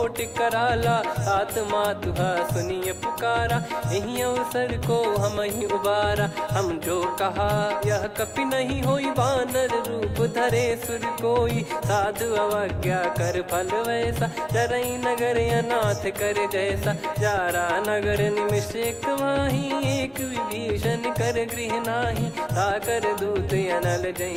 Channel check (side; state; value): both; identical; correlation 1.00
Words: कराला सात मातुहा सुनिय पुकारा यही अवसर को हम ही उबारा हम जो कहा यह कपि नहीं होई वानर रूप धरे सुर कोई साधु अवज्ञा कर फल वैसा जरई नगर अनाथ कर जैसा जारा नगर निमिष एक माही एक विभीषण कर गृह नाही ताकर दूत अनल